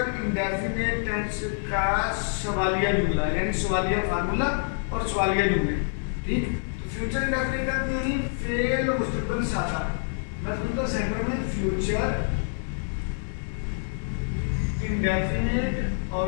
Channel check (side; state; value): right; silent; 55 dB below the other